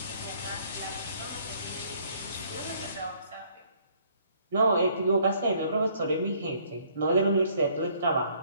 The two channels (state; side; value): inverted; both; correlation -0.63